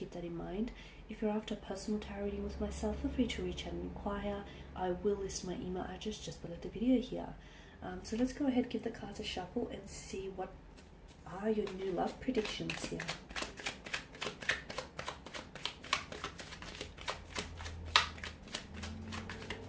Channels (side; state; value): both; identical; correlation 1.00